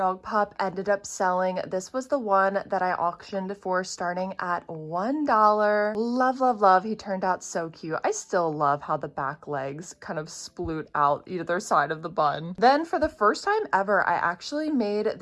pup ended up selling. This was the one that I auctioned for starting at $1. Love, love, love. He turned out so cute. I still love how the back legs kind of sploot out either side of the bun. Then for the first time ever, I actually made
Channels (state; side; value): identical; both; correlation 1.00